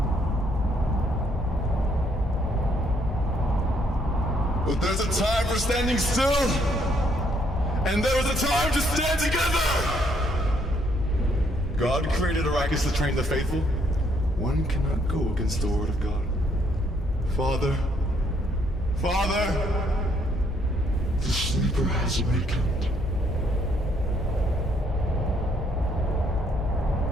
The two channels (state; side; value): normal; both; correlation 0.69